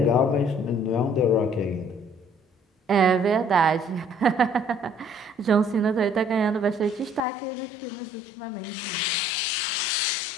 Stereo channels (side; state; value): right; drops out; at 7.2 s